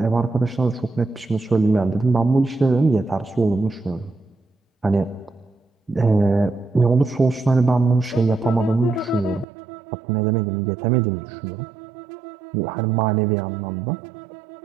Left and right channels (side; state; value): left; drops out; at 9.5 s